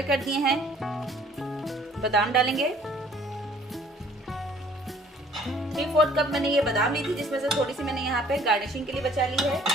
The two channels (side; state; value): both; normal; correlation 0.56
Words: कर दिए हैं। बादाम डालेंगे। 3/4 कप मैंने ये बादाम ली थी, जिसमें से थोड़ी सी मैंने यहाँ पे गार्निशिंग के लिए बचा ली है।